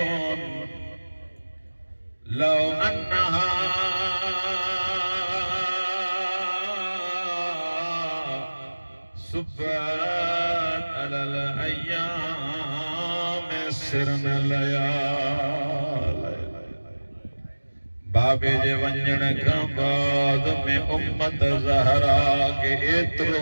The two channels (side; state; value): both; inverted; correlation -1.00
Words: लौ अन्नहा सुब्बत अलल अय्याम सिरन लयाल। बाबे जे वंजण खां बाद में उम्मत ज़हरा के एतिरो